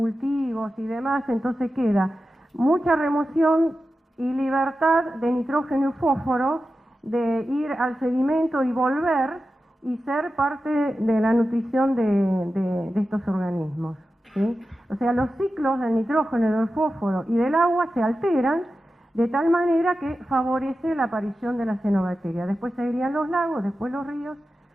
y demás, entonces queda mucha remoción y libertad de nitrógeno y fósforo de ir al sedimento y volver y ser parte de la nutrición de estos organismos, ¿sí? O sea, los ciclos del nitrógeno, del fósforo y del agua se alteran de tal manera que favorece la aparición de la cianobacteria. Después seguirían los lagos, después los ríos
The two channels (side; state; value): both; normal; correlation 0.92